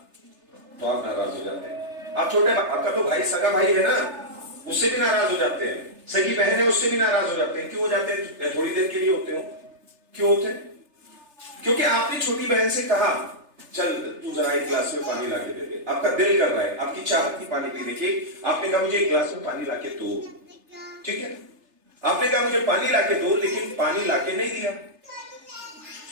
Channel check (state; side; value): late; left; 3.3 ms